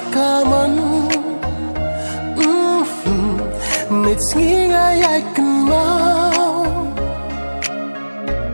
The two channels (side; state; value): both; inverted; correlation -1.00